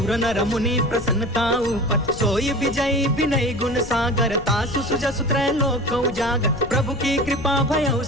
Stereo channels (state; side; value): noise; left; rumble, 13 dB below the sound